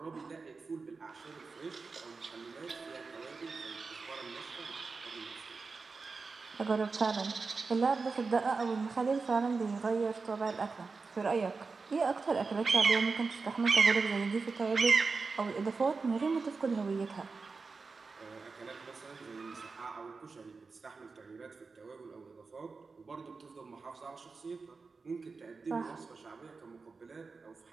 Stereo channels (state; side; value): quieter; left; 4.4 dB